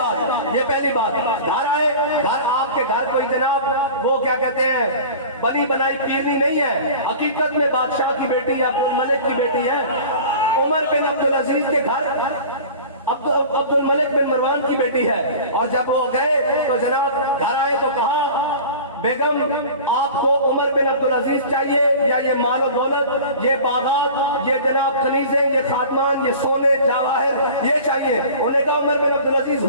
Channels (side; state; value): both; inverted; correlation -0.39